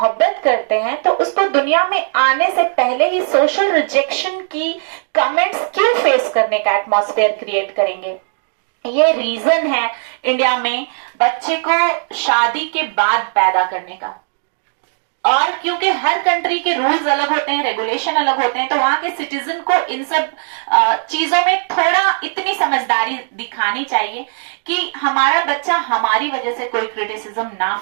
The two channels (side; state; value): left; silent; digital silence